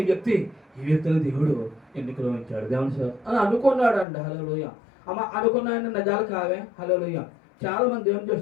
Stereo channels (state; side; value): drops out; right; at 4.0 s